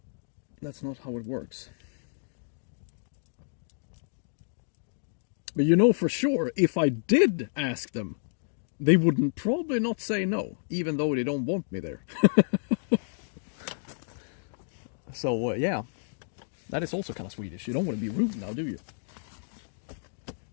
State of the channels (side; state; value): right; silent; digital silence